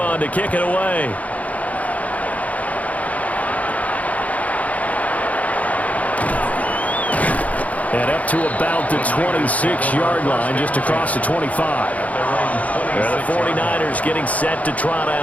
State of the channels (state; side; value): late; right; 0.071 ms